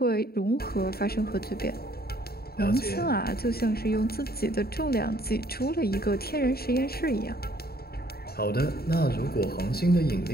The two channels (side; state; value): right; late; 0.45 ms